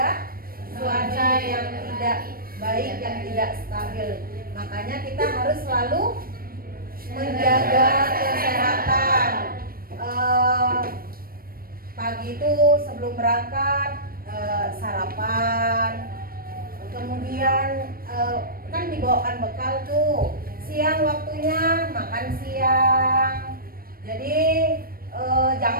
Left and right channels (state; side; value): late; left; 0.43 ms